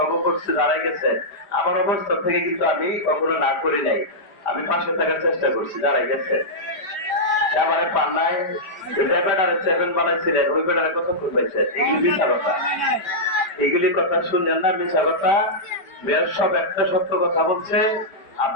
করছে দাঁড়াই গেছেন, আমার অবস্থা থেকে কিন্তু আমি কখনো না করি নাই, আমি পাশে থাকার চেষ্টা করছি, দাঁড়াই গেছে। আমার পান্নায় ব্যাটারে 7 বানাইছিলেন, ওই ব্যাটারে কথা খুঁজেছে, এগুলি মিথ্যা কথা, এগুলি কথা শুনলেন না, মিথ্যা কথা। মেয়র সব একটা সত্য কথা বলছে,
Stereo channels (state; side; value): late; right; 4.9 ms